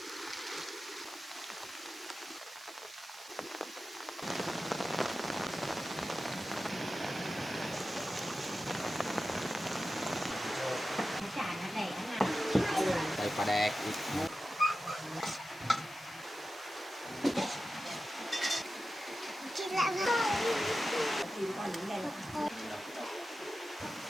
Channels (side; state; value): right; noise; hiss, 20 dB below the sound